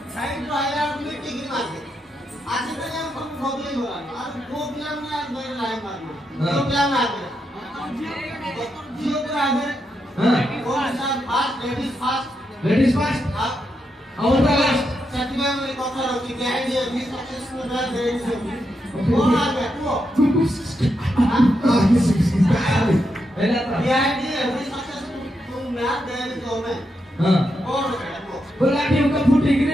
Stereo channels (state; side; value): normal; both; correlation 0.83